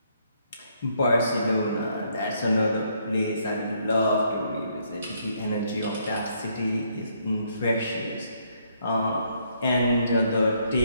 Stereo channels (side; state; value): both; inverted; correlation -0.71